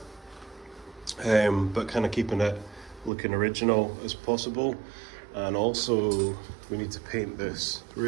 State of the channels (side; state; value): left; drops out; at 3.1 s